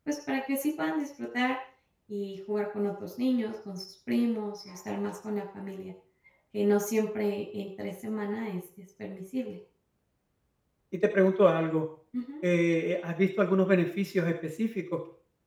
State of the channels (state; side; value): identical; both; correlation 1.00